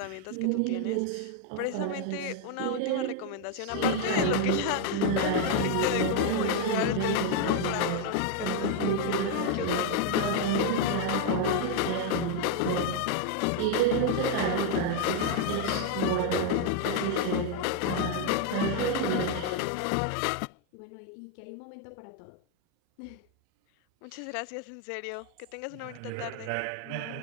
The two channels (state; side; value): different; both; correlation 0.01